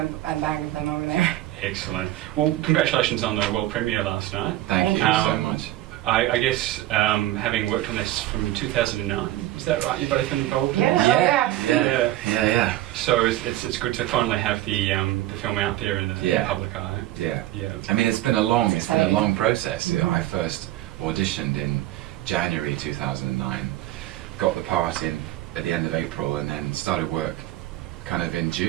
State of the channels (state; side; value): quieter; left; 15.1 dB